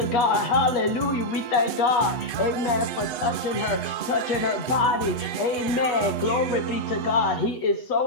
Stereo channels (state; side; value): late; right; 7.7 ms